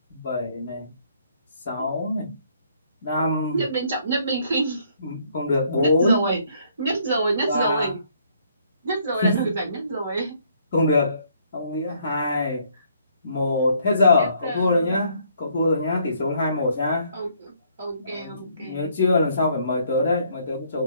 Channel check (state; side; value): inverted; both; correlation -0.66